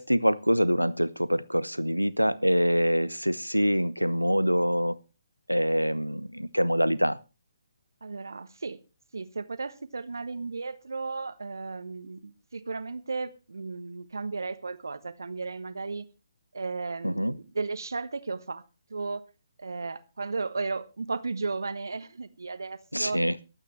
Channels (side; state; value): both; inverted; correlation -0.98